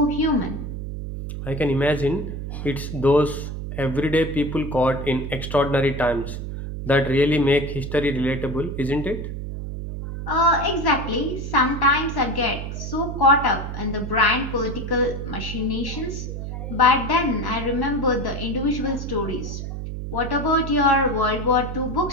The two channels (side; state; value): right; noise; hum, 6 dB below the sound